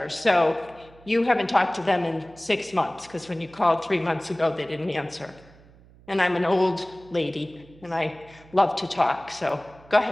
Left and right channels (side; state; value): right; noise; hum, 25 dB below the sound